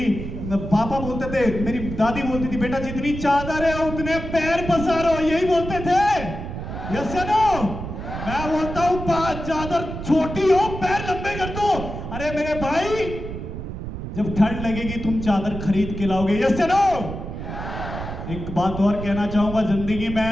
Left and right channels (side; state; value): right; noise; rumble, 7 dB below the sound